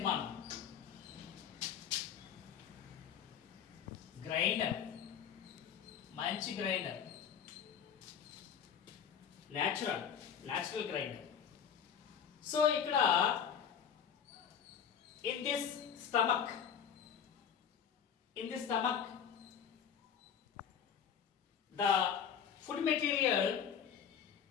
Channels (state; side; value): quieter; right; 8.0 dB